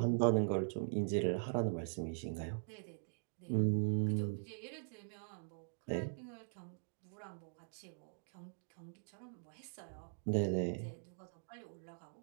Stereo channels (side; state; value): left; silent; digital silence